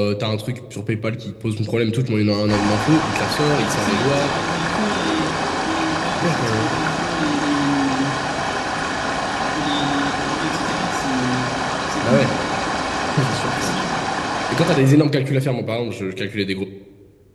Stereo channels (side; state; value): both; identical; correlation 1.00